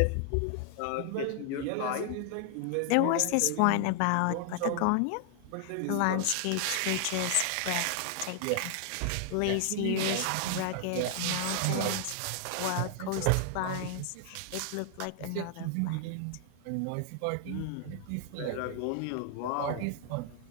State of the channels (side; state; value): both; different; correlation 0.00